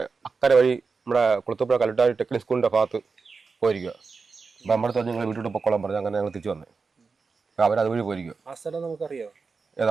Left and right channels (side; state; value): left; quieter; 4.7 dB